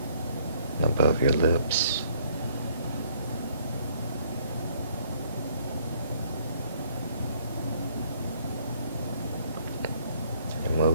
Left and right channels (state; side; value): inverted; both; correlation -0.62